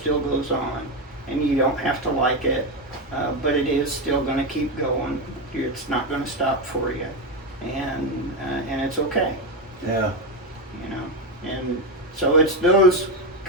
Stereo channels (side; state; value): both; normal; correlation 0.11